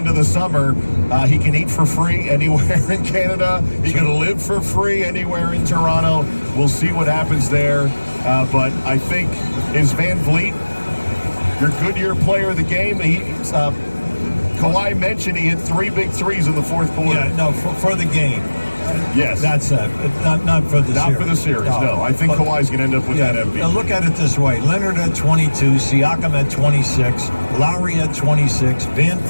the summer. He can eat for free anywhere in Canada. He can live for free anywhere in Toronto. We'll see what happens there. But I think, is Van Vliet your Goodyear player of the game? Kawhi mentioned he hit 3 big threes in the fourth quarter. Yeah, no, for the game. Yes. That's it. Not for the series. Not for the series, no. I think Kawhi's going to end up with that MVP. Now look at it this way. Leonard at 22, Siakam at 26, Lowry at 26, Van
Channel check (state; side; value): inverted; both; correlation -1.00